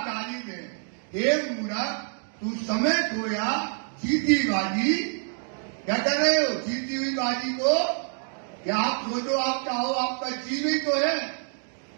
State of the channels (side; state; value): left; silent; 56 dB below the other